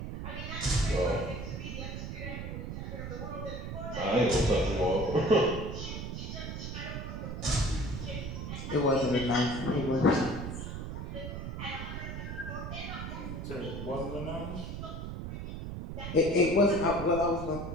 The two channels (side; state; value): right; noise; rumble, 6 dB below the sound